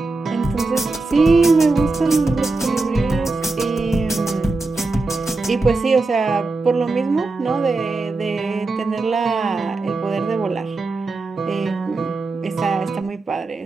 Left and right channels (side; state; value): left; quieter; 3.5 dB